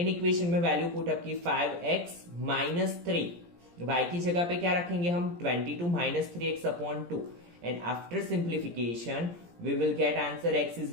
इक्वेशन में वैल्यू पुट अप की 5x माइनस 3, y की जगह पे क्या रखेंगे हम, 22 minus 3x upon 2, and after simplification we will get answer x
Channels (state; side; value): late; left; 17 ms